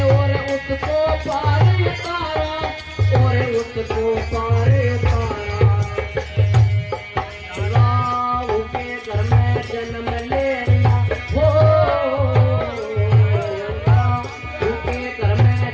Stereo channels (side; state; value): both; identical; correlation 1.00